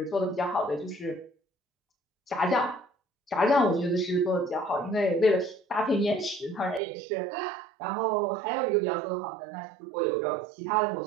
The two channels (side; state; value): left; drops out; at 6.8 s